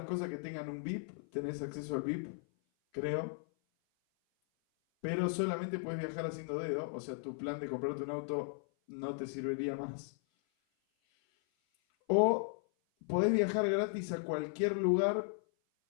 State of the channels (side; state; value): right; silent; 54 dB below the other